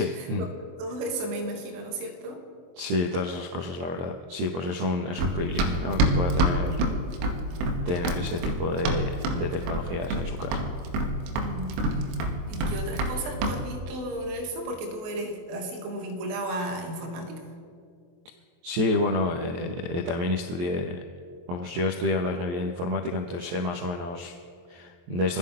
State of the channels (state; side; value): late; left; 23 ms